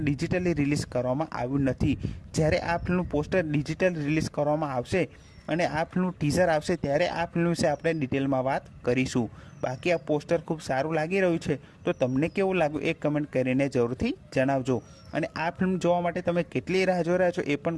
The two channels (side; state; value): both; identical; correlation 1.00